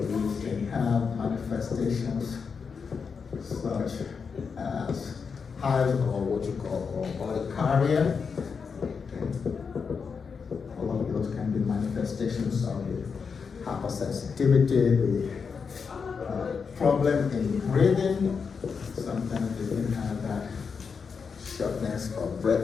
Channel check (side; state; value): right; quieter; 5.7 dB